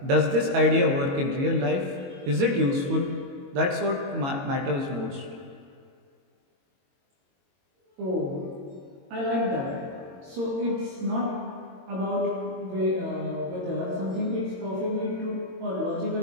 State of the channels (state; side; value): late; left; 22 ms